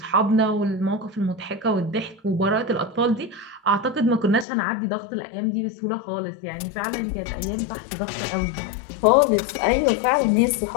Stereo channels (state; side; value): drops out; right; at 4.5 s